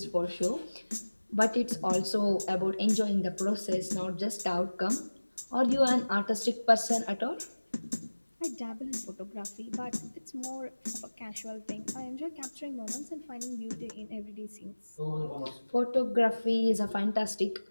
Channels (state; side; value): inverted; both; correlation -1.00